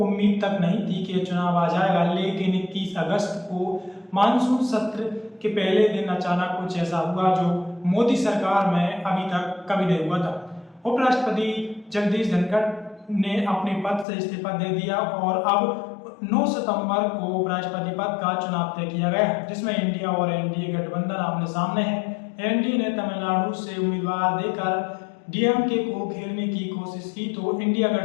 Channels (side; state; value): right; drops out; at 14.1 s